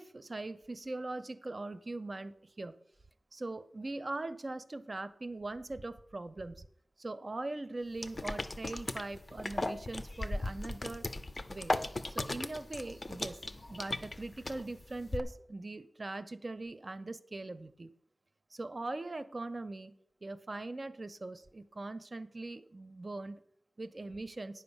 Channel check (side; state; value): both; normal; correlation 0.96